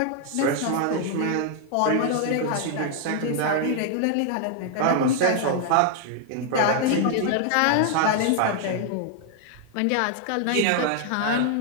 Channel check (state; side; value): different; both; correlation 0.00